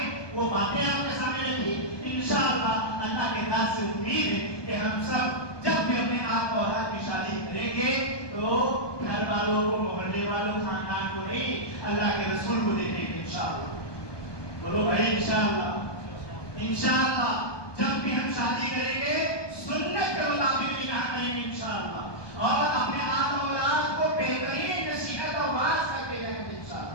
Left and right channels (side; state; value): right; late; 1.2 ms